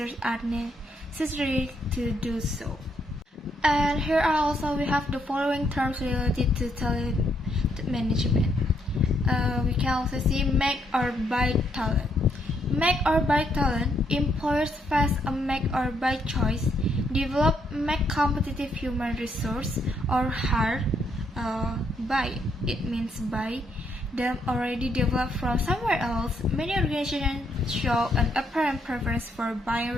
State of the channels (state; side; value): normal; both; correlation 0.74